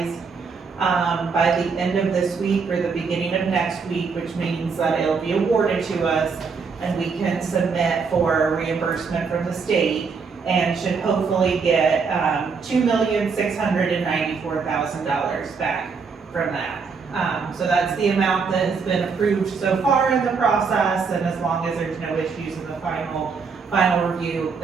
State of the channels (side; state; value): left; quieter; 5.2 dB